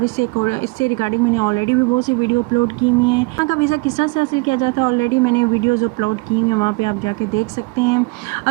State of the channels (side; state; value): left; quieter; 27.8 dB